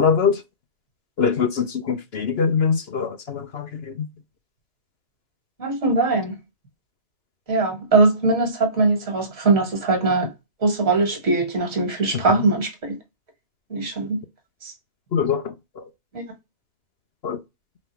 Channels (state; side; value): late; right; 2.9 ms